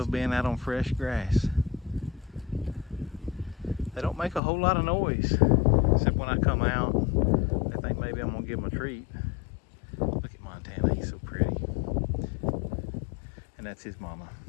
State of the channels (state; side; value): drops out; right; at 4.4 s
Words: being out on fresh grass. They don't make a whole lot of noise, except when I come out. They think maybe I'm gonna give them a treat. Look at Montana, he's so pretty. And that's his mama,